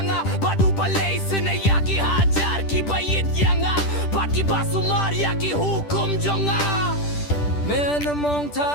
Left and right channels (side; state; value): right; late; 10 ms